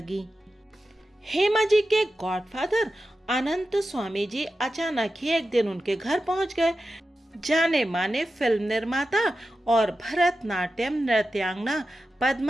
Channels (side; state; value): both; normal; correlation 0.92